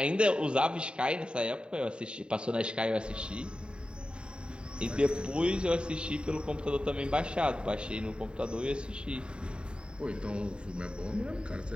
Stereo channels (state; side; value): late; left; 0.052 ms